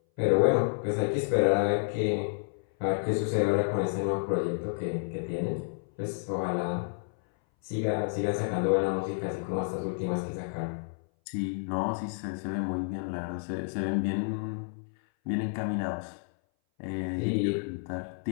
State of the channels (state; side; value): silent; right; 58 dB below the other